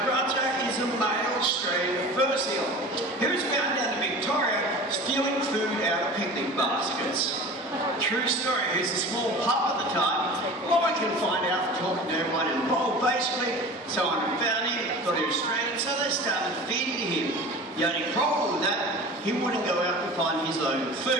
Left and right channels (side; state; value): both; normal; correlation 0.37